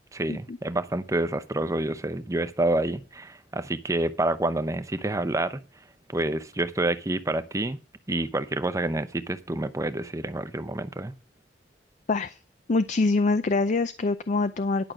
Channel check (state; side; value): normal; both; correlation 0.57